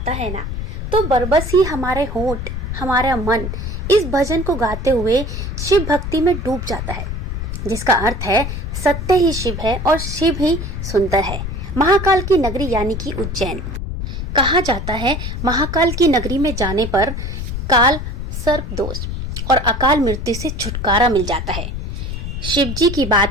है ना, तो बरबस ही हमारे होंठ, हमारा मन इस भजन को गाते हुए शिव भक्ति में डूब जाता है, जिसका अर्थ है सत्य ही शिव है और शिव ही सुंदर है। महाकाल की नगरी यानी कि उज्जैन। कहा जाता है महाकाल की नगरी में जाने पर काल, सर्प दोष और अकाल मृत्यु से छुटकारा मिल जाता है। शिव जी की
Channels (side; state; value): left; noise; rumble, 5 dB below the sound